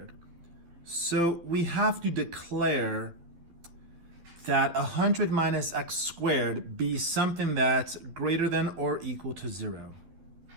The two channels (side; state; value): left; late; 12 ms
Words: So we have to declare that 100 minus x squared be something that's greater than or equal to 0.